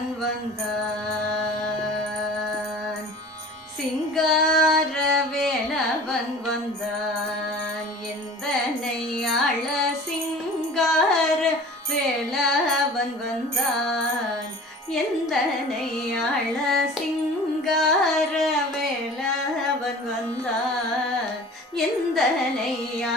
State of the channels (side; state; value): both; normal; correlation 0.42